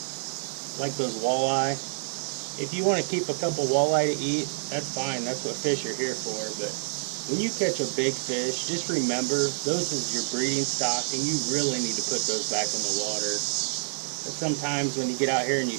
like those walleye. If you want to keep a couple walleye to eat, that's fine. That's what fish are here for. But when you catch a big fish, just remember those is your breeding stock, and you really need to put those back in the water. But sometimes when you get out here and you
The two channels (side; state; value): left; silent; digital silence